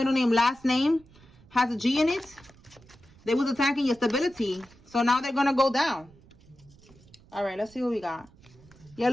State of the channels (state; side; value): noise; right; rumble, 26 dB below the sound